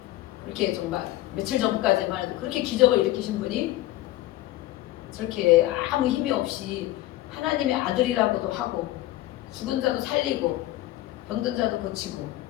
그렇게 정말 며칠 전까지만 해도 그렇게 기적을 일으키신 분이 저렇게 아무 힘이 없이 하나님의 아들이라고도 하고 죽은 자도 살리고 병든 자도 고치고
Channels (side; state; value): right; quieter; 16.1 dB